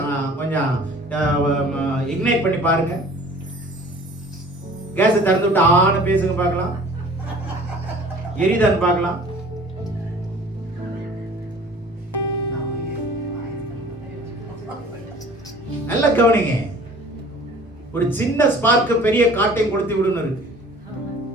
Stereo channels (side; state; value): both; normal; correlation 0.48